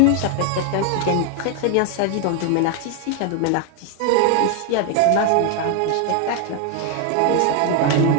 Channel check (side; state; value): both; different; correlation 0.00